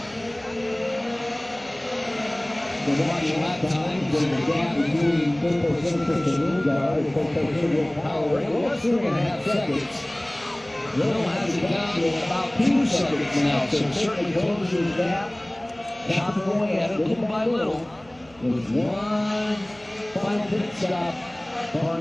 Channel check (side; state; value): right; noise; hum, 27 dB below the sound